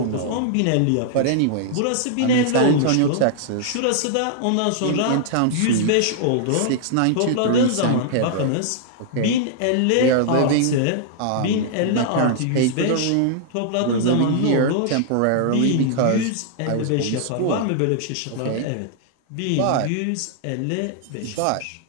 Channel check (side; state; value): both; different; correlation -0.01